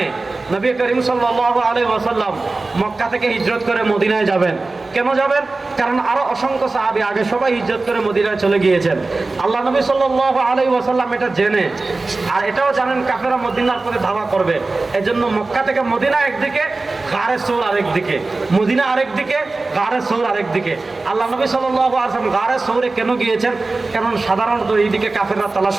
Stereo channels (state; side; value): quieter; left; 3.4 dB